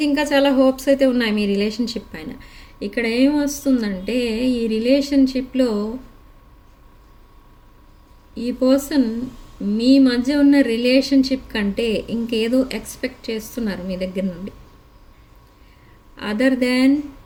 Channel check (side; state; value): both; identical; correlation 1.00